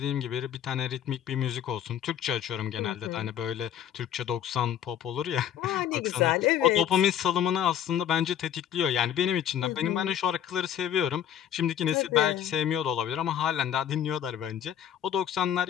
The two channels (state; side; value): quieter; right; 9.8 dB